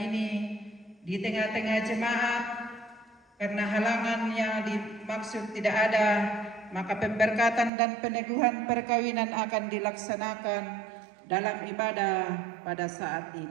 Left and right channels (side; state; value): left; drops out; at 7.7 s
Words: di tengah-tengah jemaat. Karena halangan yang dimaksud tidak ada, maka pemberkatan dan peneguhan perkawinan akan dilaksanakan dalam ibadah pada saat